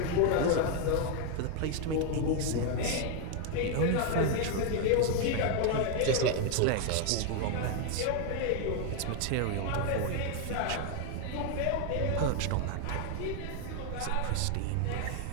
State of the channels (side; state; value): both; different; correlation 0.01